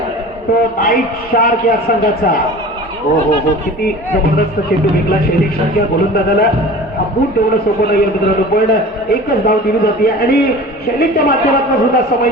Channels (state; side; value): normal; both; correlation 0.39